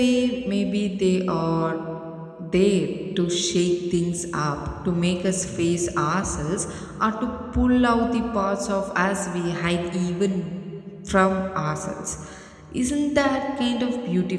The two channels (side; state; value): both; identical; correlation 1.00